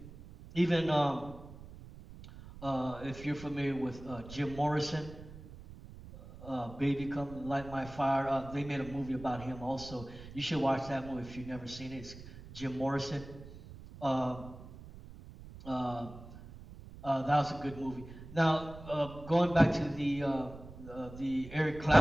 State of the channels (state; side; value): noise; right; rumble, 15 dB below the sound